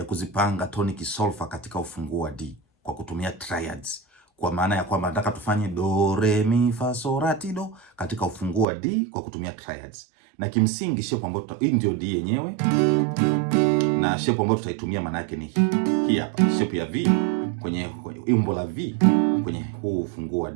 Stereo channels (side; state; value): left; drops out; at 8.7 s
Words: kuzipanga tonic solfa katika ufunguo wa D kwa kutumia triads. Kwa maana ya kwamba nataka tufanye do re mi fa so la ti do katika ufunguo wa D kwa kutumia triads. Na kimsingi shape ambayo hii ndio D yenyewe. Na shape ambayo tutaitumia maana yake ni hii hapa. Shape ya V kwenye umbo la V kwenye huu ufunguo wa